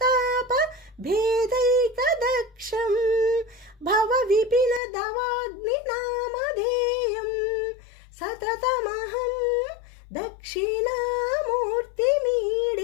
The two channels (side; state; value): right; drops out; at 4.8 s